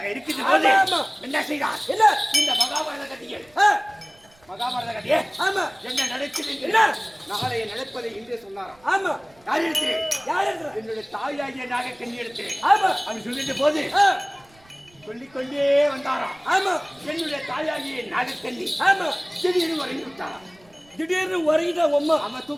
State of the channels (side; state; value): right; noise; rumble, 30 dB below the sound